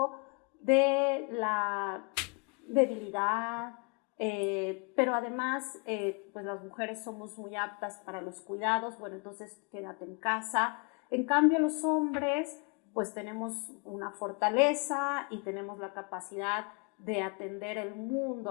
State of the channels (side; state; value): right; quieter; 33.4 dB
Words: de la debilidad, pero además pues las mujeres somos muy aptas para los cuidados, bueno, entonces quédate en casa. En cambio los hombres pues tenemos una fortaleza y tenemos la capacidad de atender el